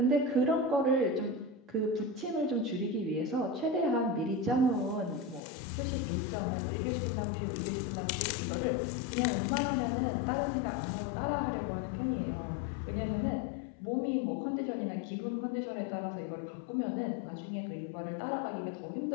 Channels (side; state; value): right; drops out; at 5.4 s